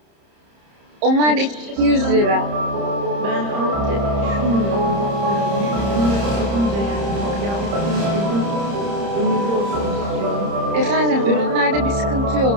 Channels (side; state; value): left; late; 30 ms